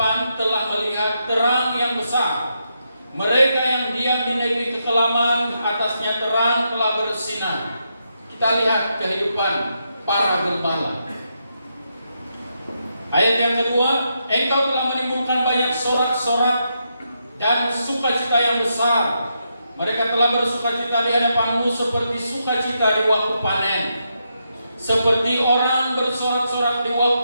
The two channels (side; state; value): both; inverted; correlation -0.82